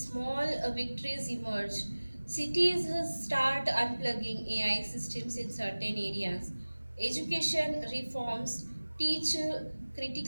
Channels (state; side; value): inverted; both; correlation -1.00